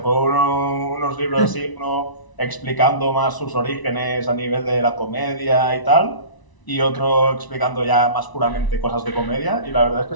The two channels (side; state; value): right; late; 1.0 ms